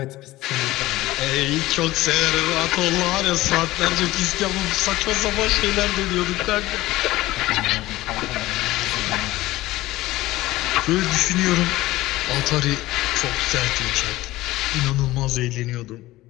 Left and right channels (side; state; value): right; quieter; 17.4 dB